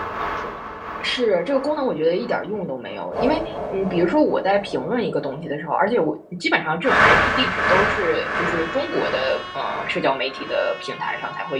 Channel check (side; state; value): both; identical; correlation 1.00